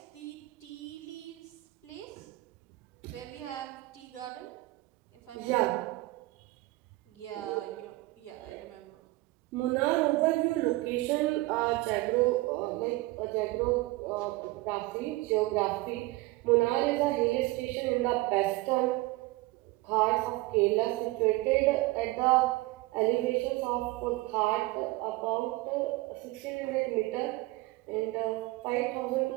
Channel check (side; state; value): left; quieter; 20.5 dB